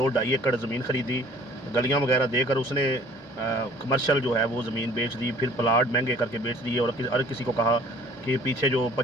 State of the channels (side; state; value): both; normal; correlation 0.54